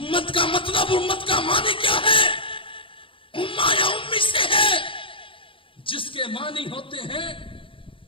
کا مطلب، امت کا معنی کیا ہے؟ امہ یا امی سے ہے، جس کے معنی ہوتے ہیں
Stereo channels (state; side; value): late; right; 0.25 ms